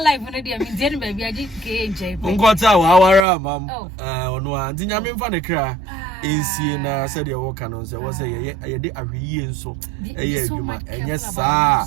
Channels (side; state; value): left; drops out; at 3.2 s